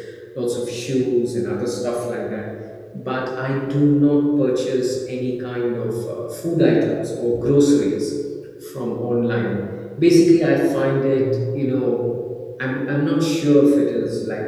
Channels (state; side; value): identical; both; correlation 1.00